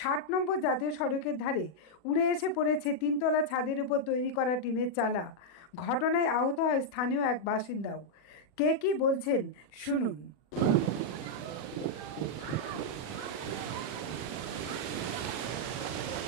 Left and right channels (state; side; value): late; right; 40 ms